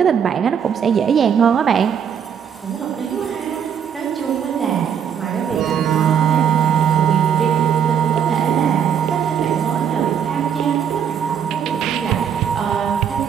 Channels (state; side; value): quieter; left; 8.1 dB